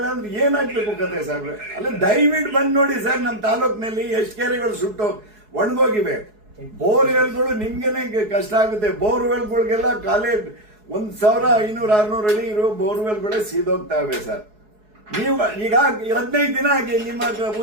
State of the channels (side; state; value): left; late; 4.7 ms